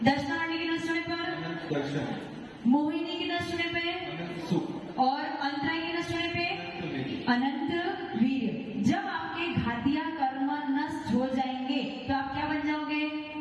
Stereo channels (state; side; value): identical; both; correlation 1.00